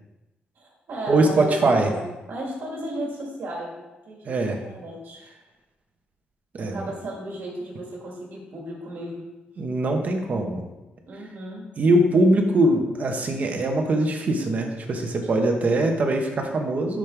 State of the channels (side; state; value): both; normal; correlation 0.76